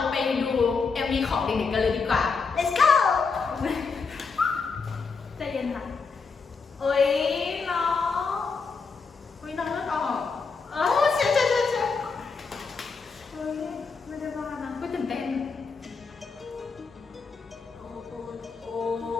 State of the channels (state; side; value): quieter; right; 4.9 dB